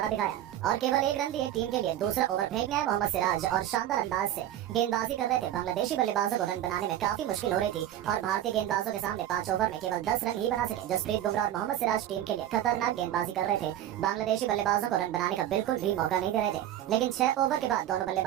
दिखाया और केवल एक रन दिए। टीम के लिए दूसरा ओवर फेंकने आए मोहम्मद सिराज और शानदार अंदाज से गेंदबाजी कर रहे थे। बांग्लादेशी बल्लेबाजों को रन बनाने में काफी मुश्किल हो रही थी और भारतीय गेंदबाजों के सामने 5 ओवर में केवल 10 रन ही बना सके। जसप्रीत बुमराह और मोहम्मद सिराज टीम के लिए खतरनाक गेंदबाजी कर रहे थे। बांग्लादेशी बल्लेबाजों को रन बनाने का बिल्कुल भी मौका नहीं दे रहे थे, लेकिन 6 ओवर के बाद दोनों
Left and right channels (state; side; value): quieter; left; 12.1 dB